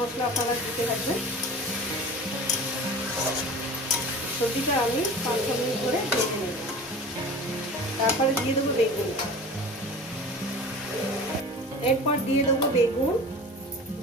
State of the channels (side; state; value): both; normal; correlation 0.37